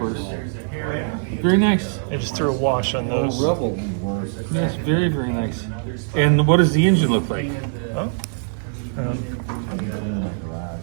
Very nice. I just threw a wash on those. Revell. Yes, very, very nice. And what does the engine look like?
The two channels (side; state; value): left; silent; digital silence